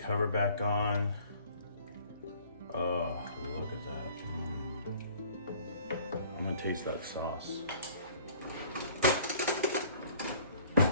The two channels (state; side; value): inverted; both; correlation -0.53